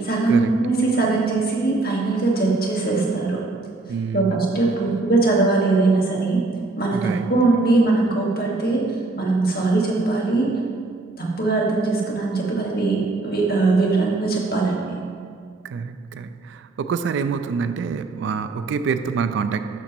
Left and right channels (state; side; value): quieter; left; 3.2 dB